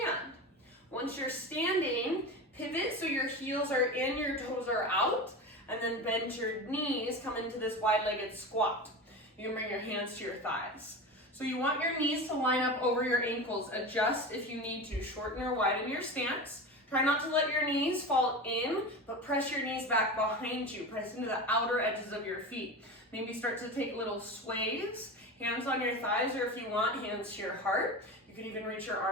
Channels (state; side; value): normal; both; correlation 0.27